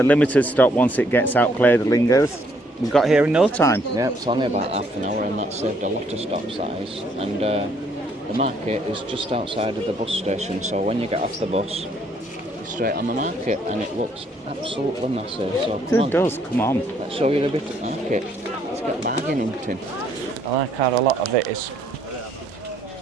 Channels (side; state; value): both; normal; correlation 0.68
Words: Limited stop once it gets out Clay de Lingers. We got here in no time. Yeah, it's only about half an hour, and that saved a lot of stop size. And the market is just outside of the bus station, so when you get off the bus, you're straight on the market, and it looks absolutely massive. So It does, come on. Let's show you a bit of the market. Let's get bargaining, Tim. I like how a lot of it is,